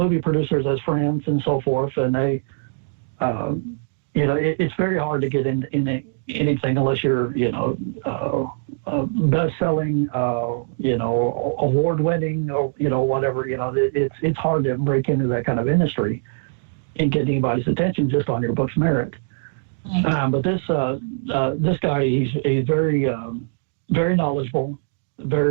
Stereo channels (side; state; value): left; silent; digital silence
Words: producers as friends and so forth, and they, it's very hard to get in anything unless you're, best-selling, award-winning, or whatever. It's hard to break into that kind of industry and get anybody's attention just on your book's merit. But this guy, he's very very knowledgeable.